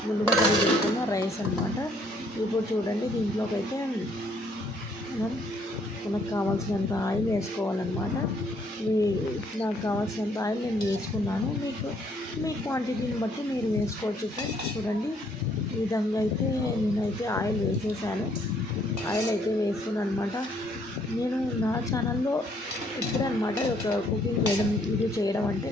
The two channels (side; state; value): both; normal; correlation 0.66